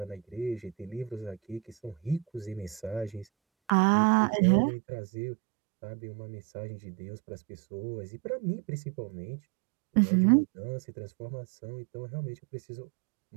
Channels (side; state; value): left; drops out; at 3.7 s